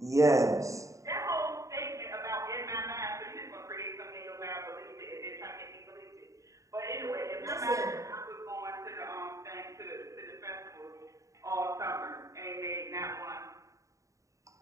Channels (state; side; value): late; left; 0.16 ms